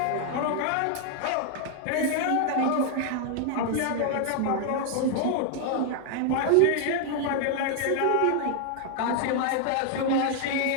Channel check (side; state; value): both; different; correlation 0.00